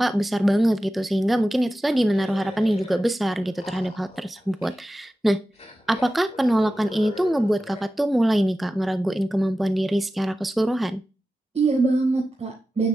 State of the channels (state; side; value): normal; both; correlation 0.94